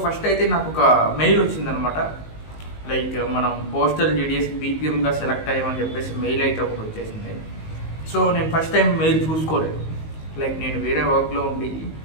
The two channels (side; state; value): right; late; 19 ms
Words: ఫస్ట్ అయితే నాకు ఒక మెయిల్ వచ్చిందనమాట, లైక్ మనం పోస్టల్ జీడిఎస్ బీపీఎంగా సెలెక్ట్ అయ్యామని చెప్పేసి మెయిల్ అయితే ఒకటి వచ్చేసింది. సో నేను ఫస్ట్ టైం మెయిల్ చూసుకోలేదు, లైక్ నేను వేరే వర్క్లో ఉండి